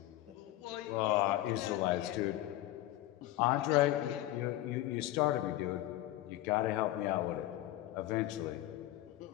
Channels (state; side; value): quieter; right; 15.1 dB